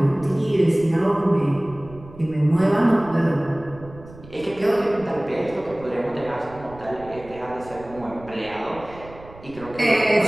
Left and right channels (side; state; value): right; noise; rumble, 19 dB below the sound